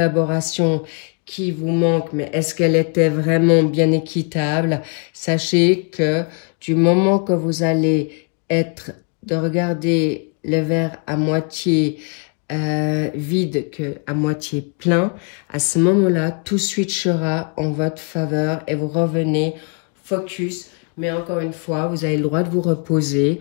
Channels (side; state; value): right; quieter; 38.9 dB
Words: qui vous manque, mais est-ce qu'elle était vraiment bien équitable? Sachez que du moment que vous allez être de regarder le verre à moitié vide qu'à moitié plein, à ce moment-là, tout switchera en votre faveur et vous revenez focus. Mais encore une fois, vous avez le droit de vous reposer.